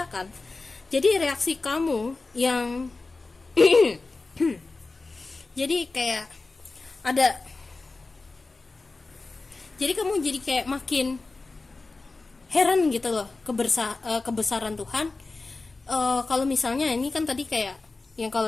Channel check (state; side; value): quieter; right; 3.6 dB